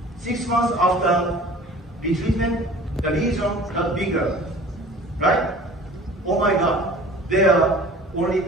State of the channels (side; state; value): both; normal; correlation 0.45